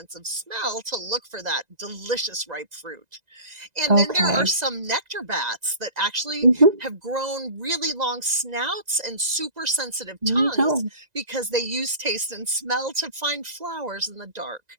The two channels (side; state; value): left; late; 1.9 ms